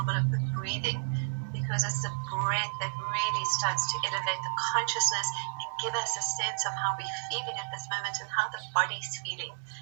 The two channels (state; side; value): silent; left; digital silence